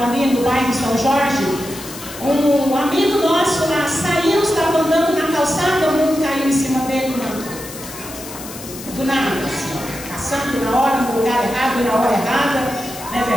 ali no bairro São Jorge, um amigo nosso lá saiu, estava andando na calçada, o mundo caiu em cima dele, do nada, assim, passando na hora, no lugar errado, na hora errada, não é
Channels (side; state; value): left; noise; hiss, 13 dB below the sound